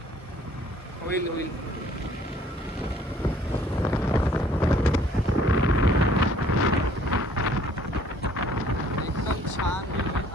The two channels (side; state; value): both; normal; correlation 0.59